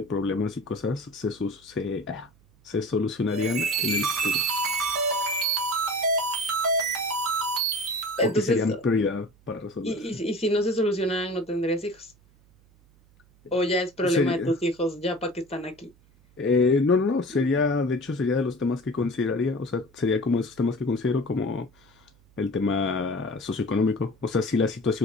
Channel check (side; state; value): right; noise; hum, 30 dB below the sound